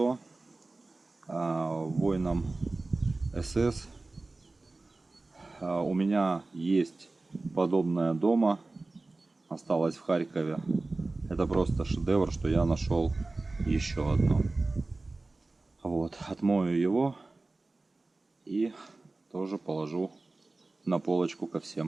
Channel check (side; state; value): left; quieter; 3.3 dB